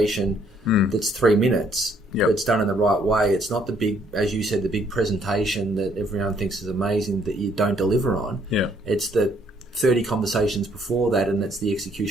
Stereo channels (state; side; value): normal; both; correlation 0.66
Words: that's 3 minutes. Yep. But it's done in the right way. It's not the big, as you said, the big presentation that everyone thinks is amazing that you don't deliver on. Yeah. It's the 30 conversations before that, and that's the